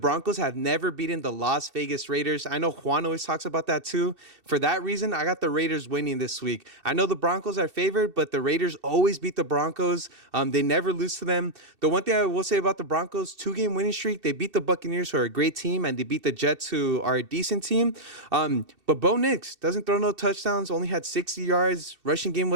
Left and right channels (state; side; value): late; left; 2.7 ms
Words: have never beaten the Las Vegas Raiders. I know Juan always talks about that too. For that reason, I got the Raiders winning this week. I know the Broncos are favored, but the Raiders always beat the Broncos. They never lose to them. The one thing I will say about the Broncos, 2-game winning streak, they beat the Buccaneers, who are a great team, and they beat the Jets, who are a decent team. But Bo Nix doesn't throw no touchdowns, only had 60 yards. Rushing game